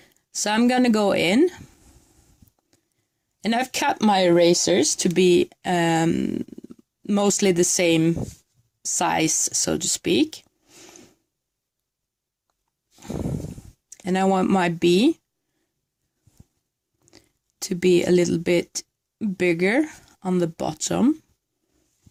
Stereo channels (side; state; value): both; identical; correlation 1.00